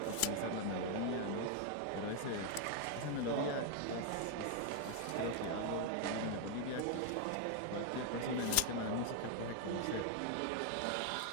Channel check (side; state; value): both; different; correlation 0.00